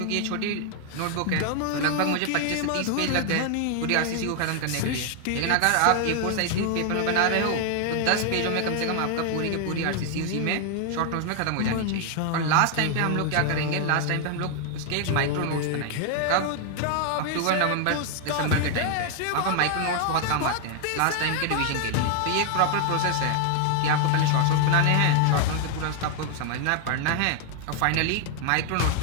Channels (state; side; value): different; both; correlation 0.00